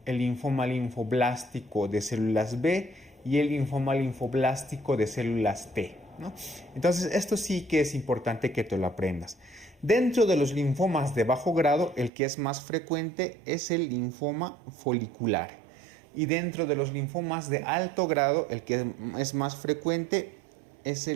el linfoma linfoblástico de células B y el linfoma linfoblástico de células T, ¿no? Entonces, esto sí que es importante que te lo aprendas. Dentro de los linfomas de bajo grado, el que es más frecuente es el linfoma folicular. Y dentro de los linfomas de alto grado, el que es más frecuente es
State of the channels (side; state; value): left; drops out; at 12.1 s